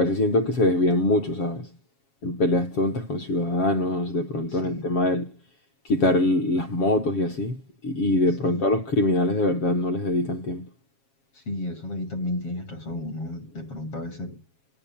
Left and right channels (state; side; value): late; right; 7.3 ms